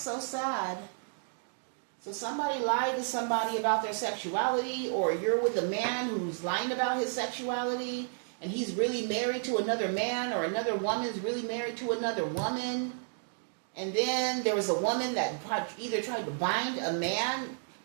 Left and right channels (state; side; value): silent; left; digital silence